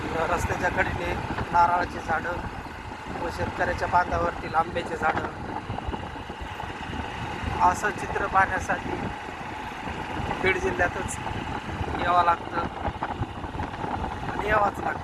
रस्त्याच्या कडेने नारळाची झाडं व शेतकऱ्याच्या बांधावरतील आंब्याचे झाडं, असं चित्र पाहण्यासाठी बीड जिल्ह्यातच यावं लागतं आणि यावंच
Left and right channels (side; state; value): both; identical; correlation 1.00